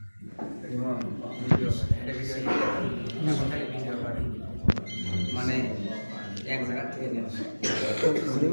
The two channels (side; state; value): both; inverted; correlation -1.00